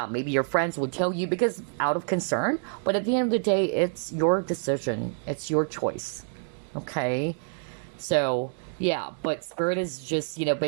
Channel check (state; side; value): silent; left; digital silence